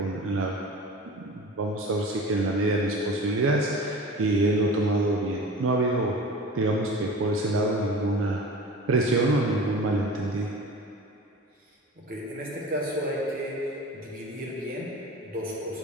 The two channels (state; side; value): normal; both; correlation 0.37